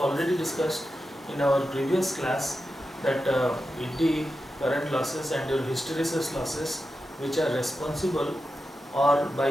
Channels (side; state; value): both; normal; correlation 0.90